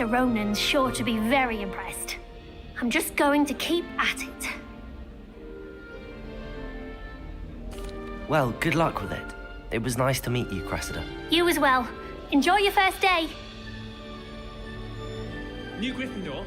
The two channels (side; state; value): both; identical; correlation 1.00